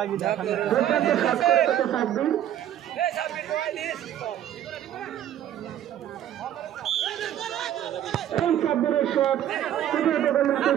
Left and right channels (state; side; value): quieter; left; 11.3 dB